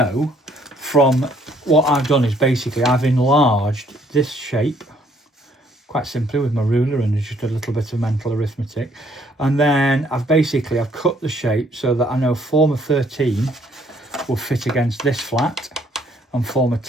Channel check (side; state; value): both; normal; correlation 0.65